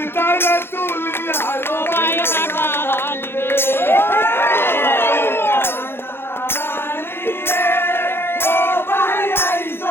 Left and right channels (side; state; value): right; late; 0.11 ms